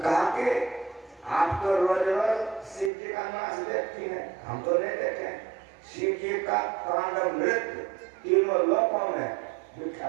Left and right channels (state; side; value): drops out; left; at 2.9 s